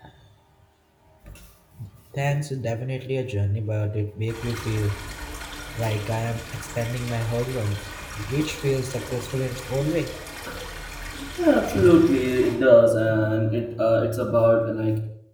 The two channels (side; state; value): both; identical; correlation 1.00